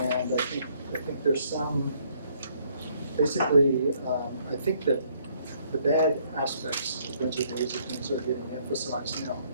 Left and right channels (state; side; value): inverted; both; correlation -0.67